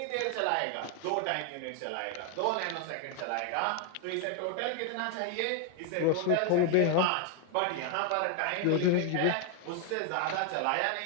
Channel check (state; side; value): different; both; correlation 0.01